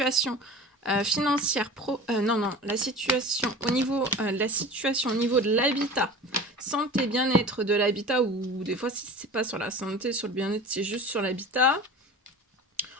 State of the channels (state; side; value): normal; both; correlation 0.36